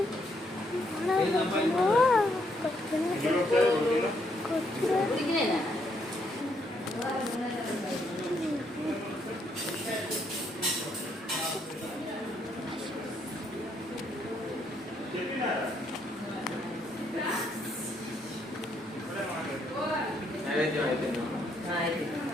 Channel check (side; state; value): both; normal; correlation 0.73